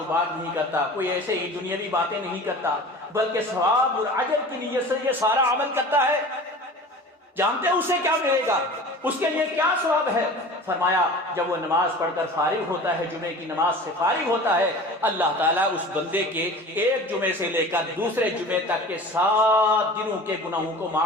بات نہیں کرتا، کوئی ایسے ہی دنیاوی باتیں نہیں کرتا، بلکہ ثواب اور اجر کی نیت سے یہ سارا عمل کرتا ہے۔ جانتے ہیں اسے کیا ملے گا، اس کے لیے کیا ثواب ہے؟ فرمایا جب وہ نماز پڑھ کر فارغ ہوتا ہے، جمعے کی نماز سے فارغ ہوتا ہے، اللہ تعالیٰ اس بندے کے ایک جمعے سے لے کر دوسرے جمعے تک کے 7 دنوں کے گناہوں کو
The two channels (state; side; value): normal; both; correlation 0.39